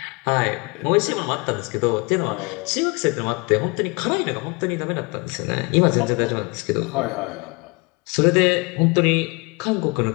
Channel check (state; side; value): quieter; right; 29.3 dB